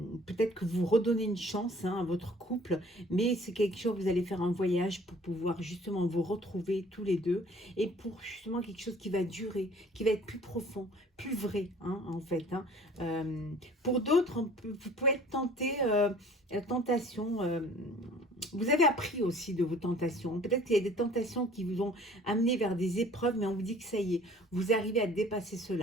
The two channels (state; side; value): normal; both; correlation 0.51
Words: peut-être que vous redonnez une chance, hein, à votre couple, mais c'est quelque chose, vous allez faire un voyage pour pouvoir justement vous retrouver tous les deux et pour justement quelque chose qui va durer, qui va être plus profond, plus vrai, hein, en fait, hein. Pour d'autres, vous pouvez être tenté, la tentation, vous avez appris aussi de vos tentations. Peut-être qu'il y a des tentations qui vous ont amené vers des épreuves, mais on vous dit que ça y est, vous arrivez à dépasser